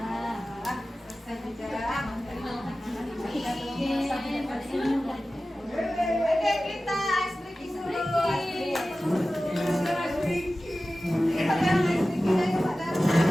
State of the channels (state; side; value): normal; both; correlation 0.95